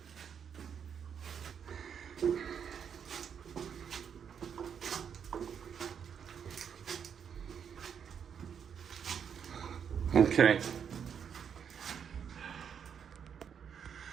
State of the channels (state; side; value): quieter; left; 7.6 dB